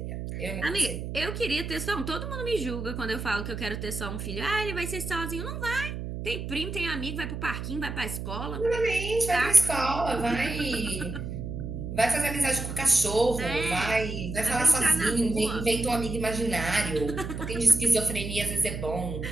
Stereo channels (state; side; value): noise; right; hum, 6 dB below the sound